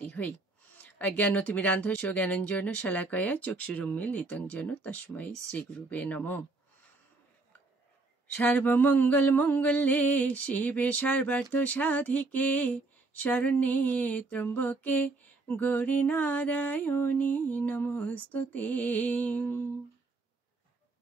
হই। জ্ঞানতিমিরান্ধস্য জ্ঞানঞ্জন শলাকয়া চক্ষুরুন্মীলিতং যেন তস্मै শ্রীগুরুবে নমঃ। সর্বমঙ্গল মঙ্গলে শিবে সর্বার্থ সাধিকে শরণ্যে ত্র্যম্বকে গৌরী নারায়ণী নমস্তুতে।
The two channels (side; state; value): left; quieter; 3.4 dB